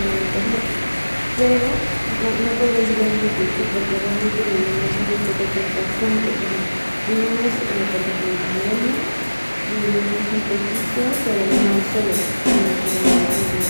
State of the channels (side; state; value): both; inverted; correlation -1.00